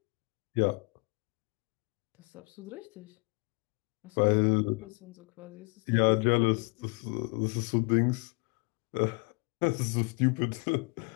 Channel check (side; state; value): right; quieter; 30.4 dB